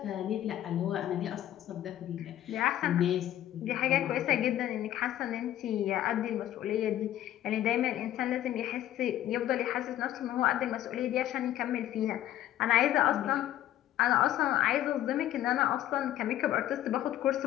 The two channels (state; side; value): quieter; right; 12.7 dB